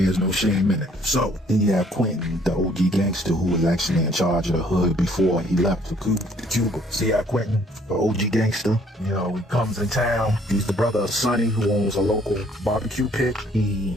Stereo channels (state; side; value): normal; both; correlation 0.61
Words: no shame in it. So then you have Quentin, the OG gangster, who was actually in charge of the hood before he left for Cuba. See how Quentin, the OG gangster, he comes in town. He's the brother of Sonny, who owns a local barbecue pit.